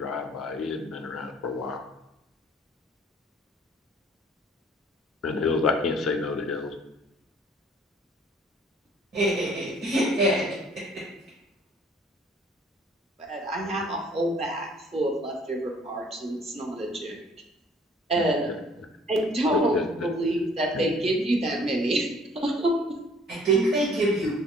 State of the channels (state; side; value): normal; both; correlation 0.56